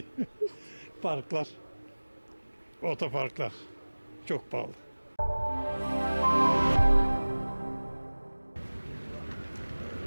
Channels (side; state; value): both; inverted; correlation -1.00